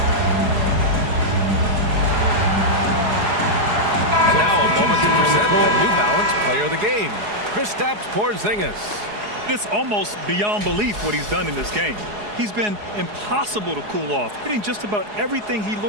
Porzingis. It's almost beyond belief what he's done in this game. He's been impossible to cool off, hitting just about everything he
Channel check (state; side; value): late; left; 4.8 ms